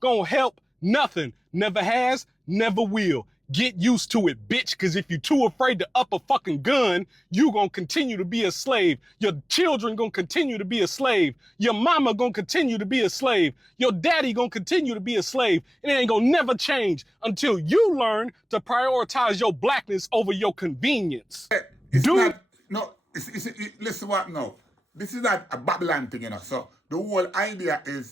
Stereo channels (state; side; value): normal; both; correlation 0.97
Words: help nothing. Never has, never will. Get used to it, bitch, because if you're too afraid to up a fucking gun, you gonna continue to be a slave. Your children gonna continue to be a slave. Your mama gonna continue to be a slave. Your daddy gonna continue to be a slave. And it ain't gonna never change until you learn to prioritize your blackness over your convenience. It's not, no, listen what now. This is not a Babylon thing, you know. So the whole idea